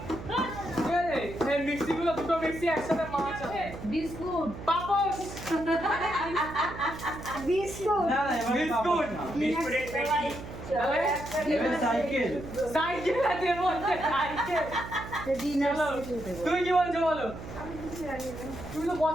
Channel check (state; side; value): noise; right; hum, 11 dB below the sound